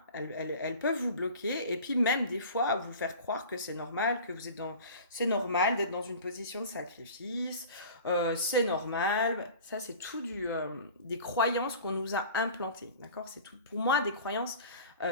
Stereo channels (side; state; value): both; inverted; correlation -0.40